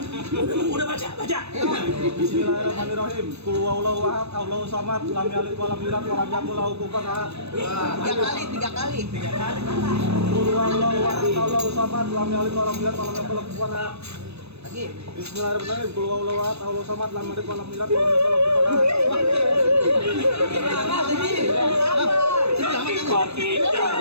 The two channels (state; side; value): late; left; 0.79 ms